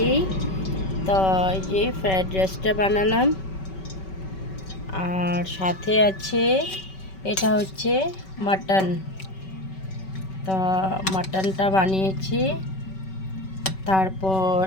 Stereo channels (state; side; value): late; right; 5.3 ms